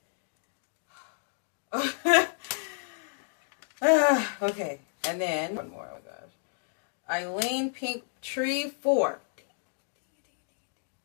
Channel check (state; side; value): silent; right; digital silence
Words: Okay. And then one more. Oh my gosh. Eileen Pink Tree 4.